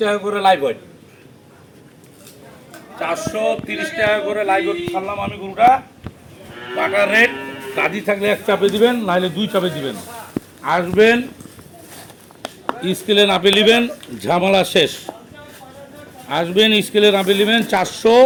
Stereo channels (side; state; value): both; identical; correlation 1.00